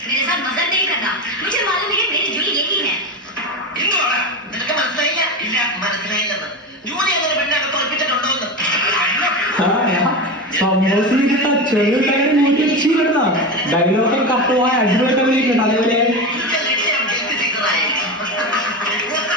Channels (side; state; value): both; normal; correlation 0.21